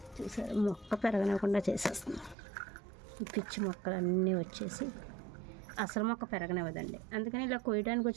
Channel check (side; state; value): left; drops out; at 2.4 s